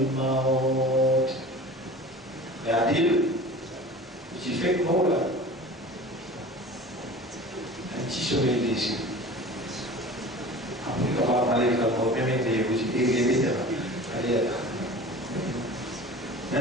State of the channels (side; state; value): both; normal; correlation 0.39